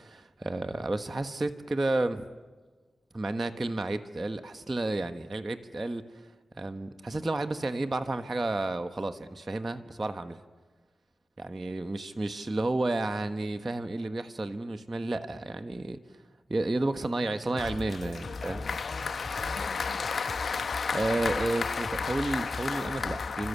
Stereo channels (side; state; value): both; normal; correlation 0.93